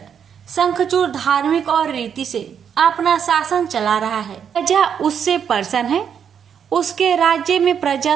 शंखचूड़ धार्मिक और रीति से अपना शासन चला रहा है। प्रजा उससे प्रसन्न है। उसके राज्य में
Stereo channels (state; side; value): quieter; left; 7.8 dB